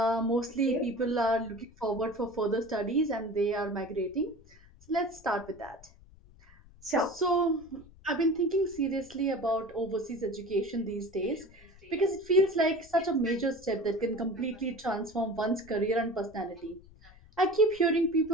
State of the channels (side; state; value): left; noise; rumble, 24 dB below the sound